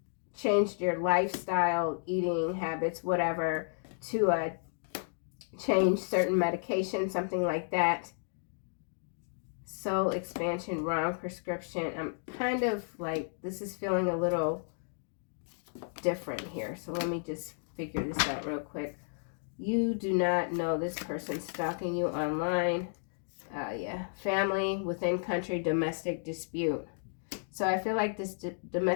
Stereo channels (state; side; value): silent; right; digital silence